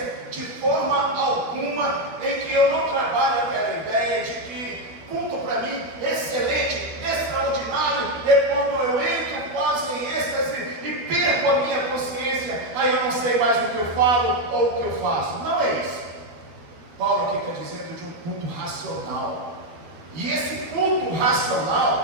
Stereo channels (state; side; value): late; left; 12 ms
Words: de forma alguma, em que eu não trabalho aquela ideia de que culto para mim excelente, extraordinário, é quando eu entro quase em êxtase e perco a minha consciência, aí eu não sei mais o que eu falo ou o que eu faço. Não é isso. Paulo aqui está dizendo de um culto racional. E esse culto